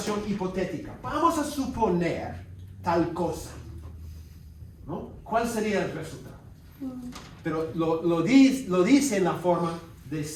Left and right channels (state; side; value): identical; both; correlation 1.00